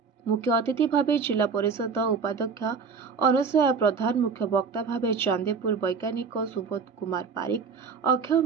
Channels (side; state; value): left; quieter; 5.5 dB